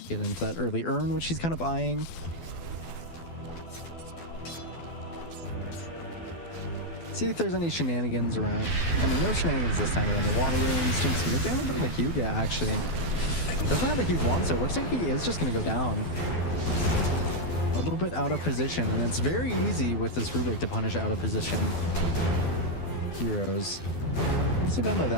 Get into that early urn, which he's kind of eyeing. See if there's any shenanigans around. I mean, no shenanigans this time around the water runes. Doing some good damage on the Huga, actually. Doesn't have a huge wand, so it looks like he is just going to go down. A little bit out of position, and it's very easy with this Rubik to punish out of position heroes. Nicely done by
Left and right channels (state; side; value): late; right; 12 ms